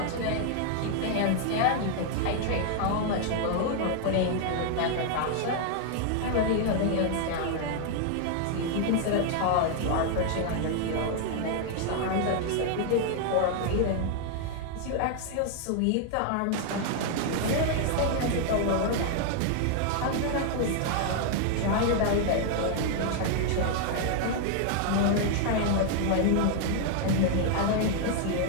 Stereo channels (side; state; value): both; different; correlation 0.00